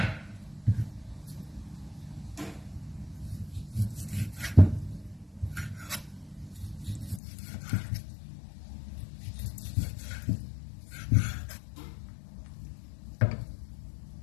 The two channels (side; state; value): right; drops out; at 7.2 s